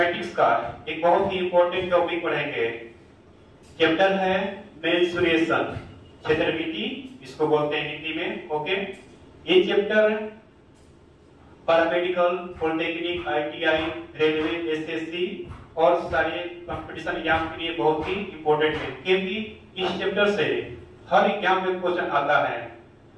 का एक बहुत ही इंपॉर्टेंट टॉपिक पढ़ेंगे। चैप्टर है मेंसुरेशन, क्षेत्रमिति इसको बोलते हैं हिंदी में। ओके, ये chapter paramedical, polytechnic, ITI, railway, SSC और सारे कंपटीशन एग्जाम के लिए बहुत ही इंपॉर्टेंट है, क्योंकि इस चैप्टर से हर एग्जाम में क्वेश्चन आता है।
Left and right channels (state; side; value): identical; both; correlation 1.00